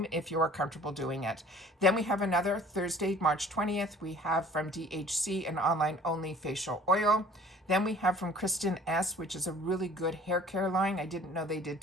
if you are comfortable doing it. Then we have another Thursday, March 20th, we have from DHC an online only facial oil. Then we have from Kristen S, which is a really good hair care line. I didn't know they did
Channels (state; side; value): normal; both; correlation 0.51